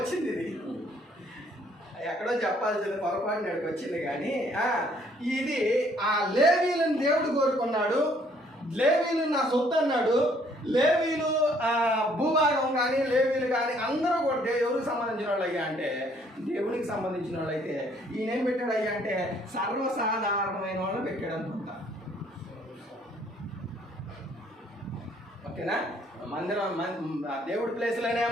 ఇది ఎక్కడో చెప్పాల్సింది పొరపాటు నాడికి వచ్చింది. కానీ ఇది ఆ లేవీలను దేవుడు కోరుకున్నాడు. లేవీలు నా సొత్తు అన్నాడు. లేవీలు భూభాగం కానీ లేవీలు కానీ అందరూ కూడా ఎవరికి సంబంధించిన వాళ్ళు అయ్యా అంటే దేవునికి సంబంధించిన వాళ్ళు. అయితే ఈయన ఏం పెట్టాడు అయ్యా అంటే సర్వసాధారణమైన వాళ్ళు పెట్టాడు అనుకుంటా. ఓకేనా? మందిరం దేవుడి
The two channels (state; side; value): normal; both; correlation 0.63